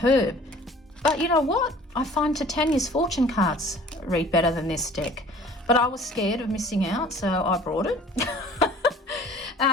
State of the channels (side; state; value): both; normal; correlation 0.49